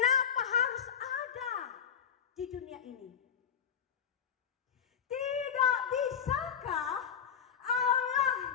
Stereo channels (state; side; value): quieter; right; 8.0 dB